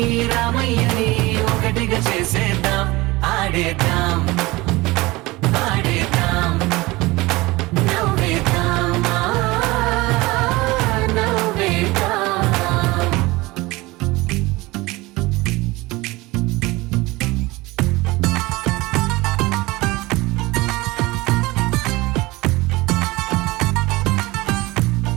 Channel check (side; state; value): left; quieter; 21.3 dB